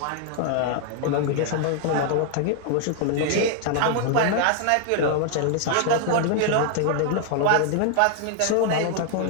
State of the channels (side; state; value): both; different; correlation 0.00